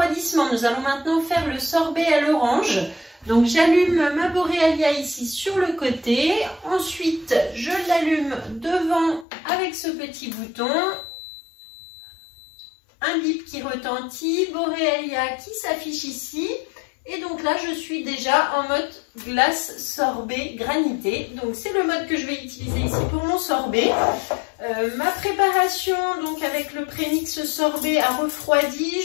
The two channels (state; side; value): drops out; right; at 9.2 s